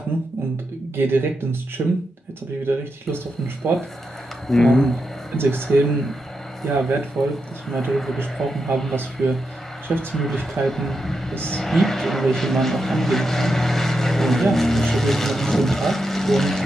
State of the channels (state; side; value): normal; both; correlation 0.86